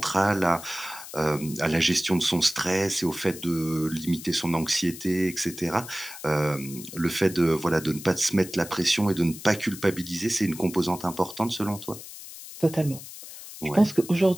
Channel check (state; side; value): noise; left; hiss, 14 dB below the sound